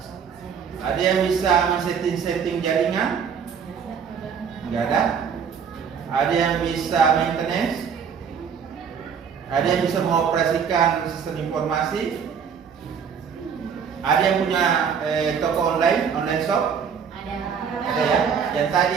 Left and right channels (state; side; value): quieter; left; 6.9 dB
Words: Ada yang bisa men-setting jaringan? Tidak ada? Ada yang bisa maintenance? Ada yang bisa mengoperasikan sistem informasi? Ada yang punya toko online shop? Ada ya? Yang tadi